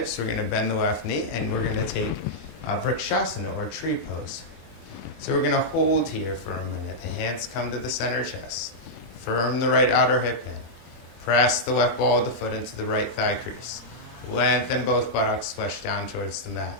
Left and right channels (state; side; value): late; right; 24 ms